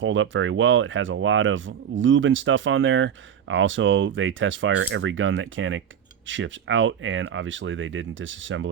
up very well. It has a lot of lube and stuff on there. Also, they test fire every gun that Canik ships out, and obviously they didn't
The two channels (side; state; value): left; quieter; 8.6 dB